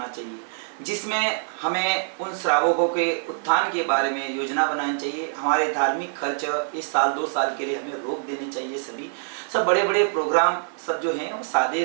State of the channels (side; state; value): left; silent; digital silence